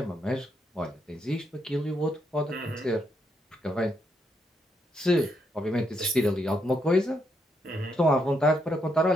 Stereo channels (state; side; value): normal; both; correlation 0.78